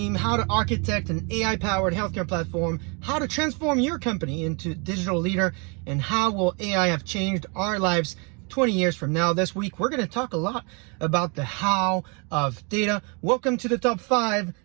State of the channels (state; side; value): quieter; left; 33.3 dB